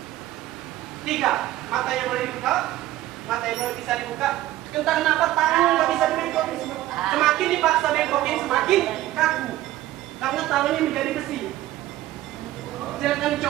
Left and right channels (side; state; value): left; quieter; 15.2 dB